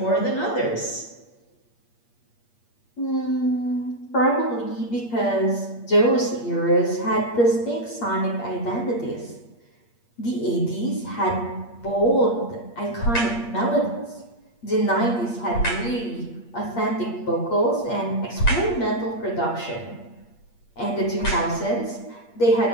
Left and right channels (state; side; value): late; right; 8.5 ms